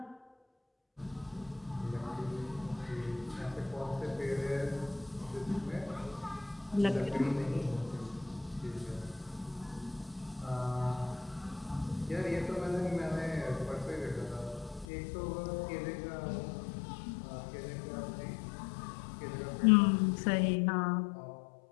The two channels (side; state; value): right; drops out; at 14.9 s